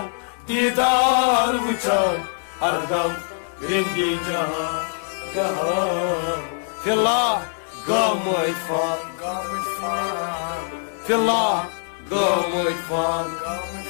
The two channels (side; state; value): right; silent; digital silence